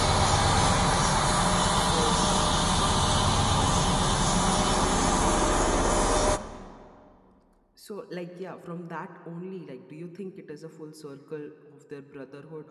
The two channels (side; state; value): both; identical; correlation 1.00